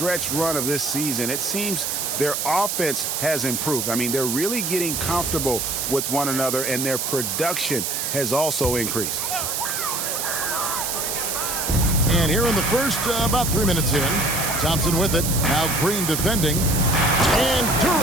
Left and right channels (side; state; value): right; noise; hiss, 1 dB below the sound